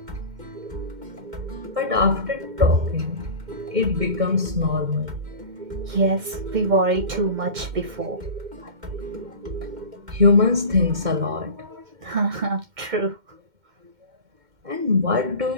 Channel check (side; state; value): left; late; 2.1 ms